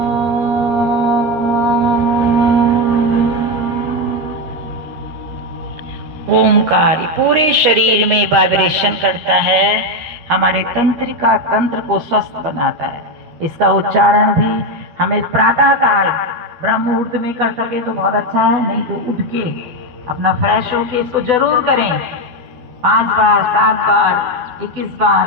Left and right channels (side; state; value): left; late; 12 ms